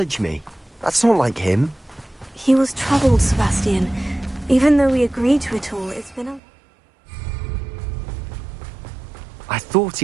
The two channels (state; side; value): drops out; left; at 6.4 s